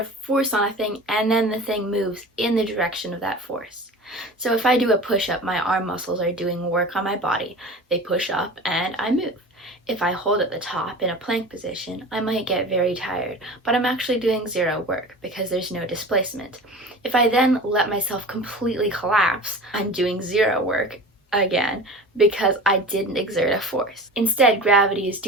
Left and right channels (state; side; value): normal; both; correlation 0.36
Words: force on a thing and then the thing moves in the direction of that force. So if I do a push-up, my arm muscles are doing work on my body. They push up and I move. If I hold at the top in a plank position, I might get very tired, but I'm actually doing zero work because there's no displacement. If I then let myself completely collapse, I'm doing zero work again because I didn't exert a force. Instead, gravity is